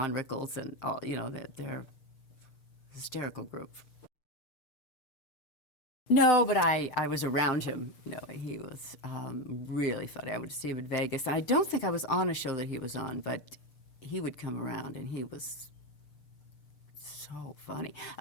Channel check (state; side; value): late; right; 6.7 ms